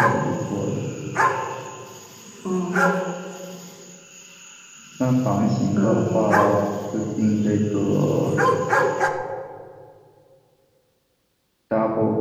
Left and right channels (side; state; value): both; identical; correlation 1.00